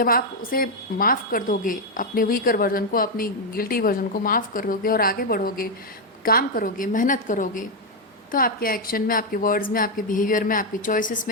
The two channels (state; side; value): normal; both; correlation 0.02